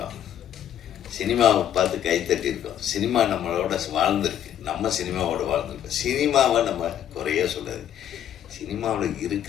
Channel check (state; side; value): quieter; right; 10.3 dB